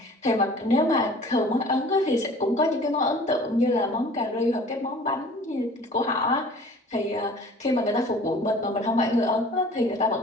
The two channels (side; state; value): both; normal; correlation 0.47